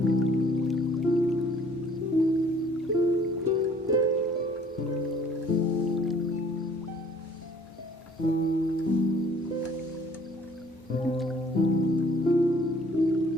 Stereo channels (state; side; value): normal; both; correlation 0.56